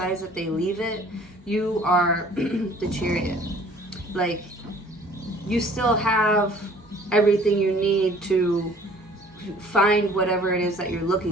that they leave it, you are the Chariot. Like, you still have everything you need to find whatever it is that you're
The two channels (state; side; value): normal; both; correlation 0.53